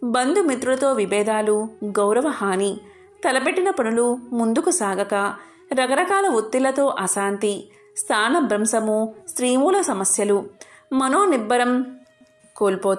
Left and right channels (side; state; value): both; identical; correlation 1.00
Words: బంధుమిత్రులతో విభేదాలు, గౌరవ హాని, తలపెట్టిన పనులు ముందుకు సాగక రకరకాల ఒత్తిళ్లతో అశాంతి, స్థానభ్రంశము, స్త్రీమూల సమస్యలు, మనోనిబ్బరం